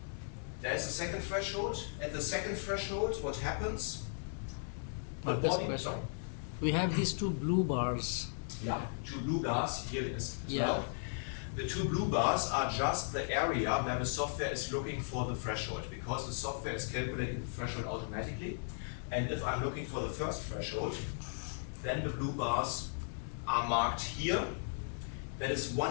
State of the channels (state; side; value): silent; right; 53 dB below the other